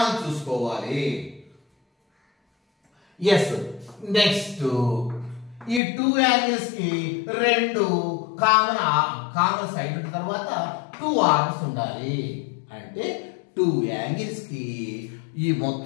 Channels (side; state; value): right; drops out; at 5.8 s